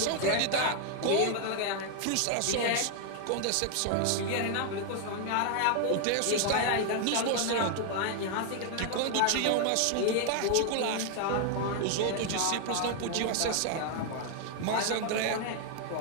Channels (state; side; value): different; both; correlation 0.00